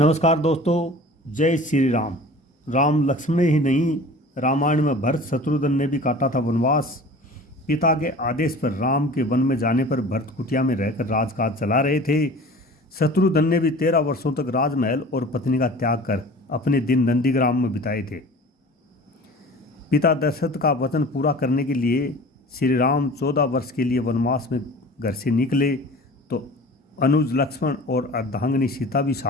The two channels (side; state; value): both; normal; correlation 0.41